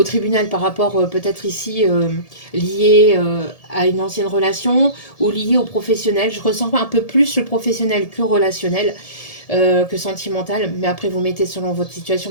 tribunal par rapport peut-être ici lié à une ancienne relation ou lié au professionnel. Je ressens un peu plus le professionnel que relationnel que sentimental, mais après vous mettez selon votre situation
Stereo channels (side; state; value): right; late; 1.7 ms